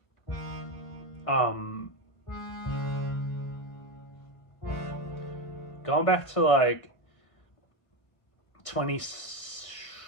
um, going back to 20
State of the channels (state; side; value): late; right; 1.5 ms